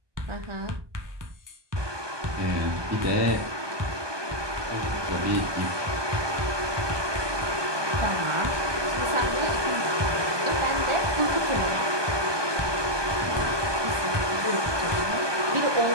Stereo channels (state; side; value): late; left; 1.2 ms